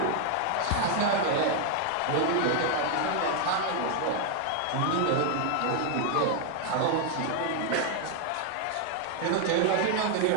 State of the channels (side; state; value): both; different; correlation 0.00